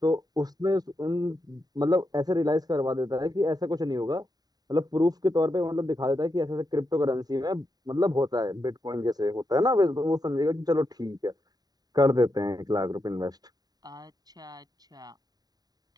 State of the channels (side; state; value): left; late; 0.19 ms